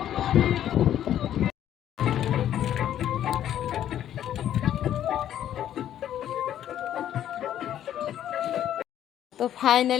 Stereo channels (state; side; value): quieter; right; 11.1 dB